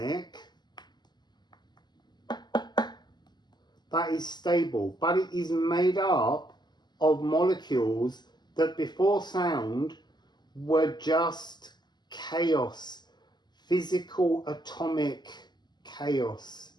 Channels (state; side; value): late; right; 0.21 ms